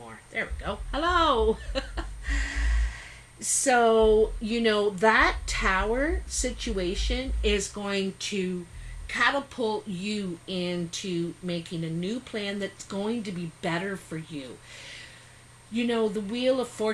There we go. Hello. So, you know, that tower situation is going to catapult you into making a new plan that's going to be better for you. You know, the Wheel of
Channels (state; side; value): identical; both; correlation 1.00